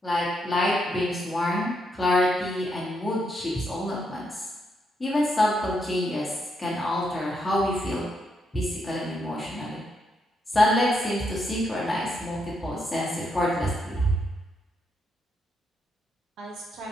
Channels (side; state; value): both; normal; correlation 0.79